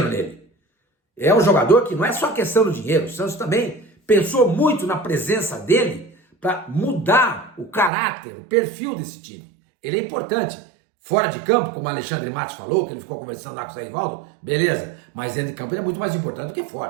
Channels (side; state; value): left; drops out; at 7.9 s